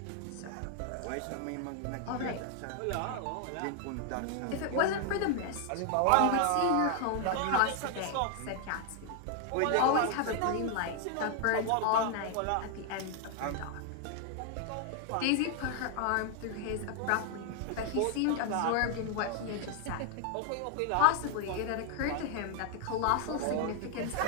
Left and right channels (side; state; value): both; different; correlation 0.01